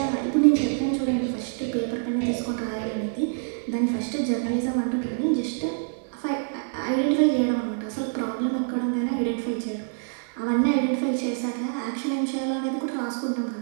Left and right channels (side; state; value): left; silent; digital silence